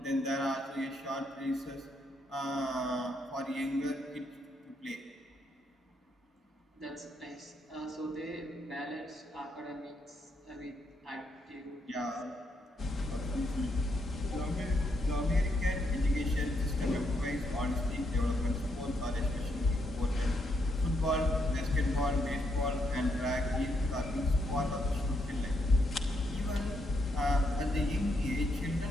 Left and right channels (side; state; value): both; normal; correlation 0.77